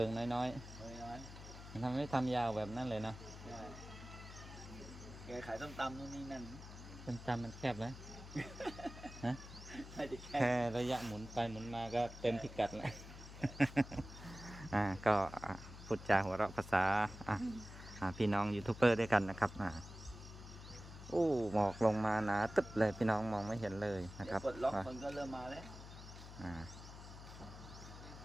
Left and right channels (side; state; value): left; noise; hum, 14 dB below the sound